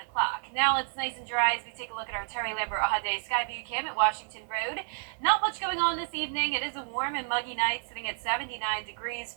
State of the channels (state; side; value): silent; left; 58 dB below the other